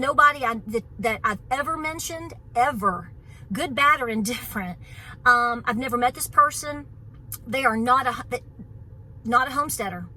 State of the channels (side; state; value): both; identical; correlation 1.00